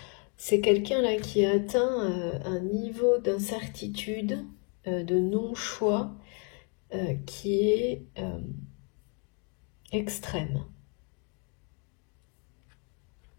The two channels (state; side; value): quieter; right; 36.4 dB